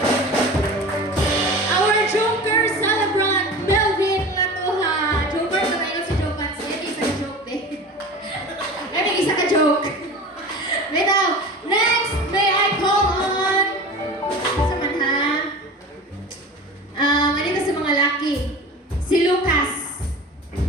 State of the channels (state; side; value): normal; both; correlation 0.35